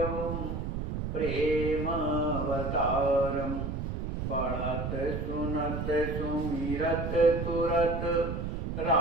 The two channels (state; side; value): noise; right; rumble, 3 dB below the sound